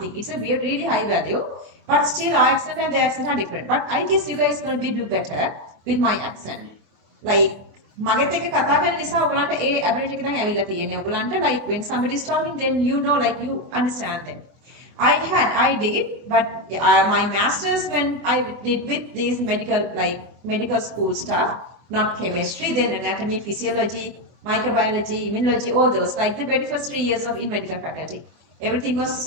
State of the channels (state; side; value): late; left; 24 ms